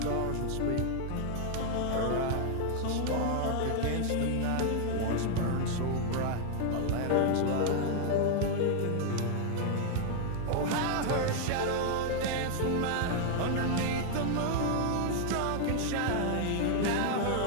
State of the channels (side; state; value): both; different; correlation 0.00